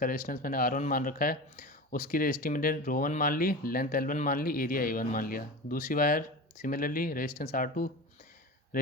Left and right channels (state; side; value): normal; both; correlation 0.29